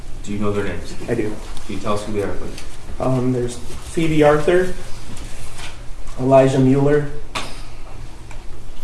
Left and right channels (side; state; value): both; identical; correlation 1.00